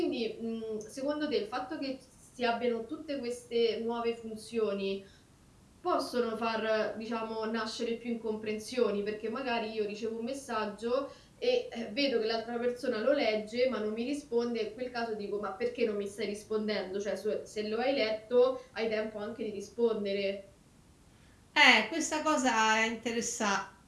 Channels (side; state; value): both; identical; correlation 1.00